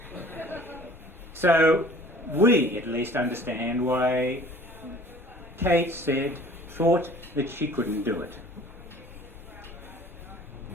So we at least understand why Kate thought that she couldn't do it.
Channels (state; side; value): normal; both; correlation 0.49